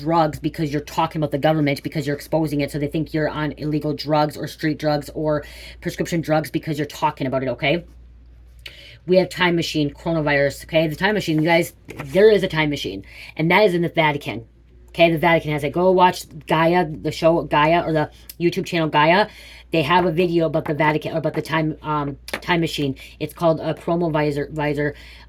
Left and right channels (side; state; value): both; identical; correlation 1.00